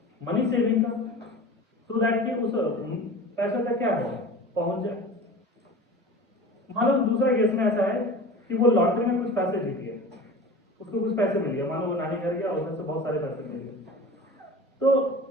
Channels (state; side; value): normal; both; correlation 0.36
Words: मनी सेविंग का, सो दैट कि उस पैसे तक क्या है? पहुंच जाए। मान लो दूसरा केस में ऐसा है कि वो लॉटरी में कुछ पैसे जीत गया, उसको कुछ पैसे मिल गया, मान लो वो नानी घर गया और उधर से बहुत सारे पैसे मिल गए, तो